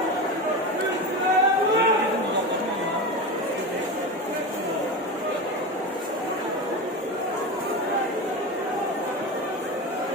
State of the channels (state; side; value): normal; both; correlation 0.23